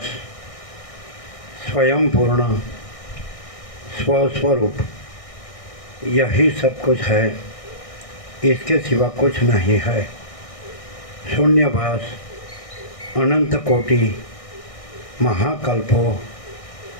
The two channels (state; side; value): late; right; 1.6 ms